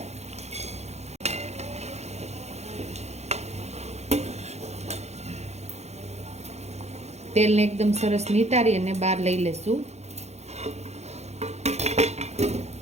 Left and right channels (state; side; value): late; left; 0.32 ms